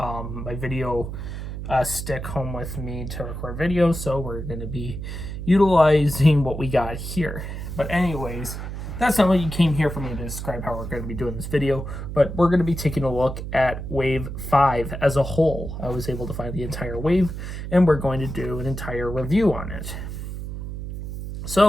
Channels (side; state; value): right; noise; hum, 7 dB below the sound